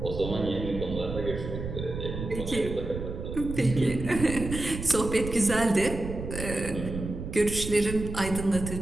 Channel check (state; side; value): noise; right; rumble, 7 dB below the sound